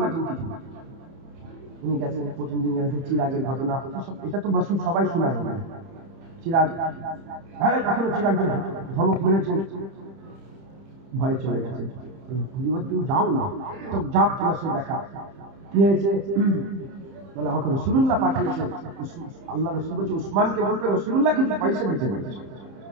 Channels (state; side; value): late; left; 30 ms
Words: কিছু। উনি গেছেন, প্রথম দিন গেছেন, চিরাগের ঘটনা, এটা তো বসু সবাই শোনায়। চিরাগ, হ্যাঁ এখনো চিরাগের ধমক মেরেছেন। ভয়ে চলে গেছে। হুজুর তুমি যাও না, তো যাও তোমার সাথে দেখা। কি হয়েছে? বলে আমাকে রাসূলুল্লাহ পাঠিয়েছেন। আল্লাহ রাসূল বলছে উসমানকে বলবে রাসূলুল্লাহ কিছু পয়সা দিতে বলেছে,